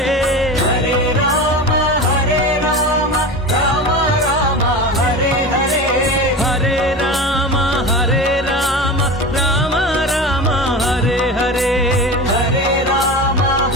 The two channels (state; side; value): normal; both; correlation 0.28